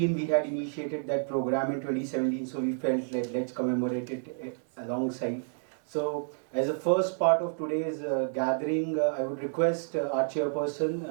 we had initiated that program in 2017, so we felt like let's commemorate it alongside. So as a first part of today's gathering, I would request our chairperson,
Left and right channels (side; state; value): left; silent; digital silence